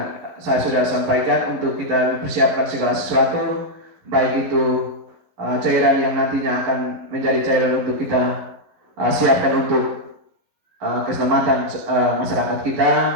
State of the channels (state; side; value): late; left; 11 ms